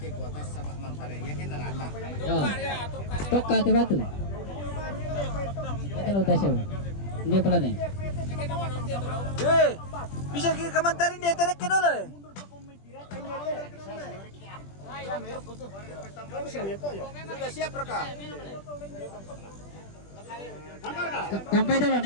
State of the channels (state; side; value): late; right; 20 ms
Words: kuotas sa mangpare. Yakin na rata. Yo. Toka te batu. Yakin udah siya. Hindi pala na. Bisa kamantarin dia terek ke dulu. Sudah siap Raka? Sampai dulu